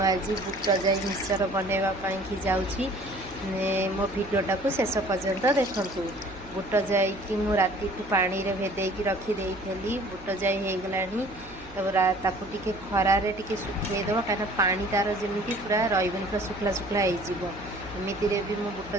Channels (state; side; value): noise; right; hum, 20 dB below the sound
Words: बुट जाई मिक्सचर बनवाई जाऊँगी मो भिडटा को शेष पर्यंत देखूँ। बुट जाई कि मु राति पानी रे भेदेकी रखीदे बुट जाई हो गला ताकू टिके खरारे टिके सुखेदेव कहीं पानी तार जमी पूरा रही पूरा शुखला शुखला होमती भी मो बुट